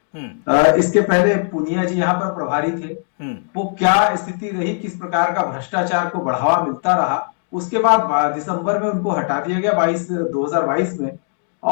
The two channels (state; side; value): silent; right; 55 dB below the other